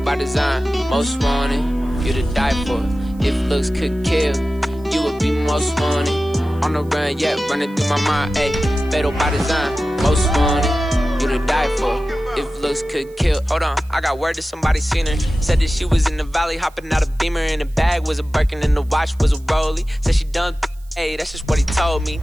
design, most wanted. You to die for. If looks could kill, you would be most wanted. On the run, yeah, running through my mind. Ayy, fatal by design, most wanted. You to die for. If looks could kill. Hold on, I got word that somebody seen her. Said that she was in the valley, hopping out a Beamer. And the bag was a Birkin and the watch was a Rollie. Said she done, hey, that's just what he told me.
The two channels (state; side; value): noise; right; hiss, 29 dB below the sound